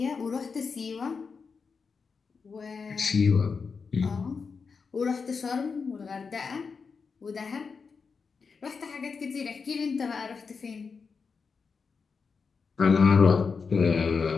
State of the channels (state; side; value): quieter; right; 5.2 dB